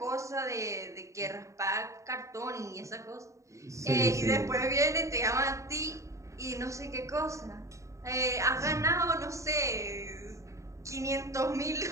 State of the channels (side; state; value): left; late; 0.15 ms